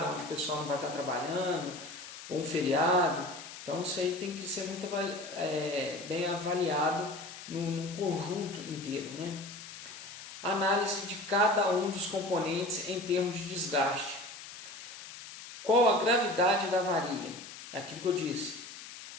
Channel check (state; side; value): noise; left; hiss, 13 dB below the sound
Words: onde o pessoal não vai estar trabalhando, ou um feriado. Então isso aí tem que ser muito bem avaliado num conjunto inteiro. Análise de cada um dos componentes em termos de desgaste. Qual a gravidade da avaria? É aquilo que eu disse.